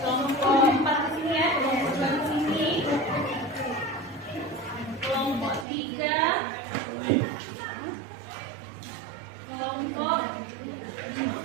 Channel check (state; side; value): drops out; left; at 5.7 s